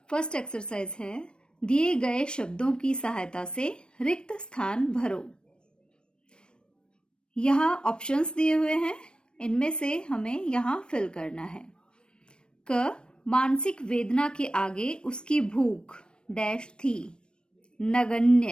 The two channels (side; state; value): right; late; 0.053 ms